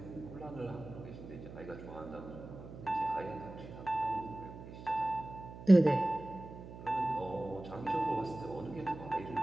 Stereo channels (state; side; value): noise; right; hum, 13 dB below the sound